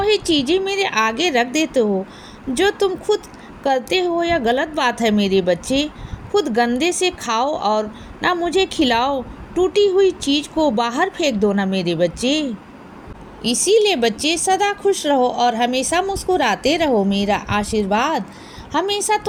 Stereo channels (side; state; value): both; identical; correlation 1.00